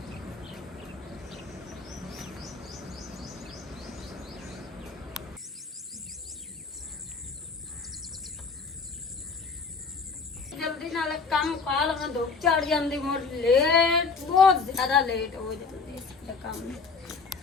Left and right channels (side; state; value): right; quieter; 4.7 dB